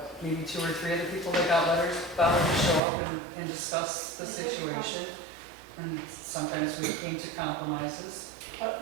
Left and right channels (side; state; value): left; drops out; at 2.8 s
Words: maybe 2 or 3 other people that got letters bothered to show up and discuss the situation. And sometimes we came to compromises. But